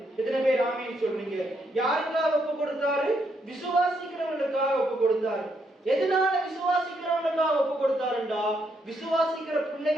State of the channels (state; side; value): normal; both; correlation 0.76